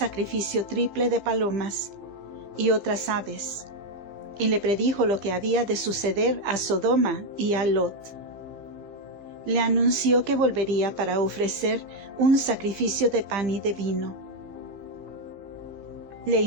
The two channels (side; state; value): left; late; 15 ms